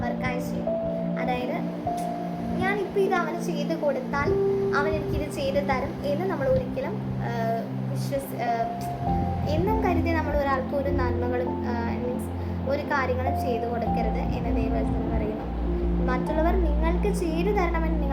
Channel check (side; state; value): both; identical; correlation 1.00